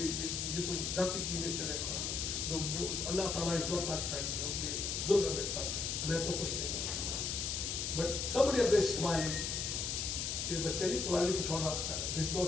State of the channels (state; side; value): noise; left; hiss, 1 dB below the sound